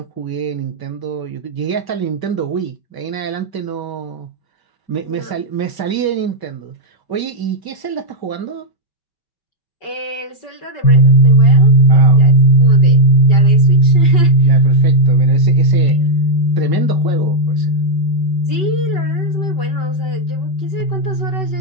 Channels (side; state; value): right; late; 5.2 ms